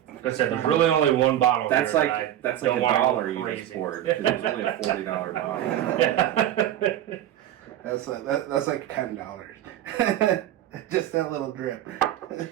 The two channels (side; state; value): left; quieter; 12.1 dB